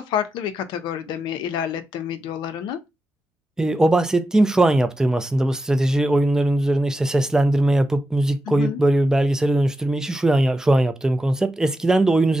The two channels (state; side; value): normal; both; correlation 0.89